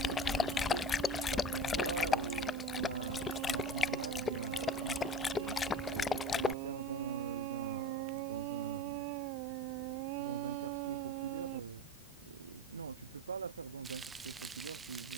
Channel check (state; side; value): normal; both; correlation 0.33